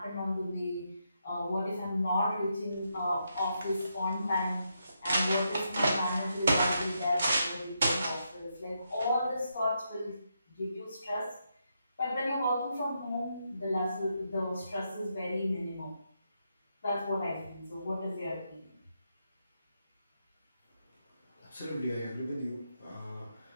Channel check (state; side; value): inverted; both; correlation -0.81